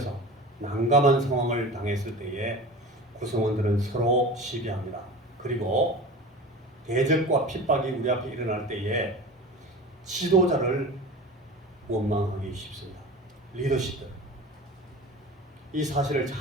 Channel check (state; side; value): normal; both; correlation 0.34